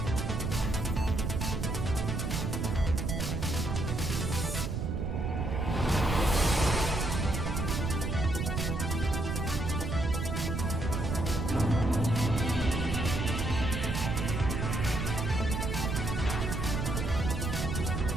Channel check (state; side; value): noise; right; rumble, 1 dB below the sound